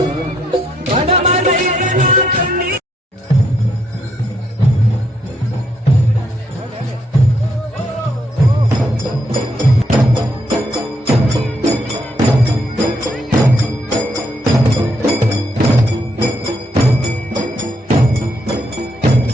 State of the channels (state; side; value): normal; both; correlation 0.74